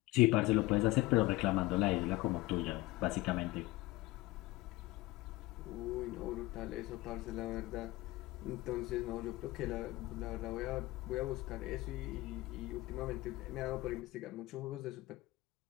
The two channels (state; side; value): quieter; right; 19.4 dB